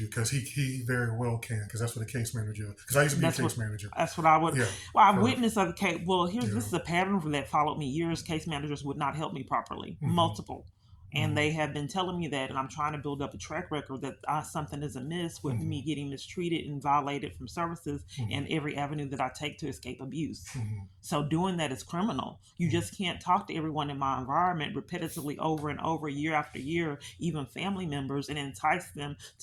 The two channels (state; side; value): identical; both; correlation 1.00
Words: because he very well can because that's what a case manager. Because I used to be a That's what case manager. that's what I would. Yeah. Well, I For witnessed other case. Well, here's yeah. this is a pattern that followed me years. Case managers would not help me properly, Mm-hmm. multiple, and Mm-hmm. they have been telling me that, and I'm trying to build up a track record that something is amiss with Mm-hmm. me getting mistreated and violated from services Mm-hmm. and every avenue that I take to escape abuse. Mm-hmm. So doing that is criminal. You Mm-hmm. just can't talk to everyone in my environment repetitively over and over, year after year, even family members, and entice them